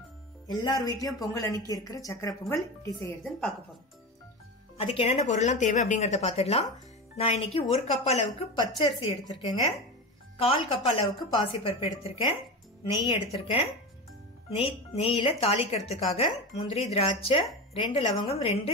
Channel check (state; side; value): normal; both; correlation 0.24